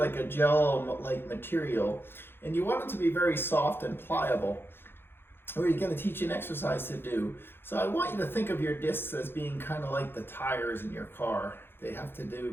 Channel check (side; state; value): right; late; 0.10 ms